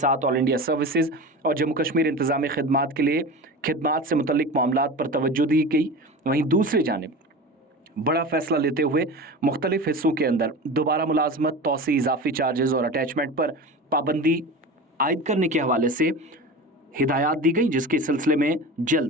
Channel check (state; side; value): normal; both; correlation 0.31